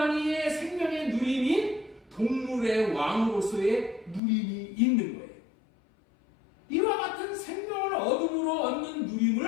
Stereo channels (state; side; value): drops out; right; at 4.2 s